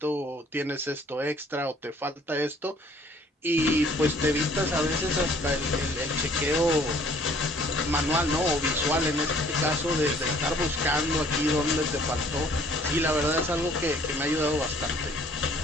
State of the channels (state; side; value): normal; both; correlation 0.57